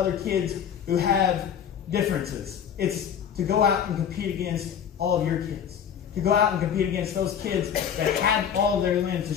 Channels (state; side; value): quieter; right; 8.4 dB